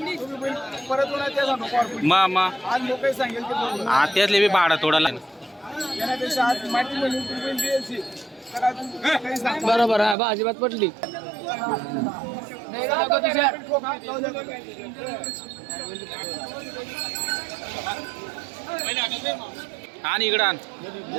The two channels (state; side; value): drops out; left; at 10.2 s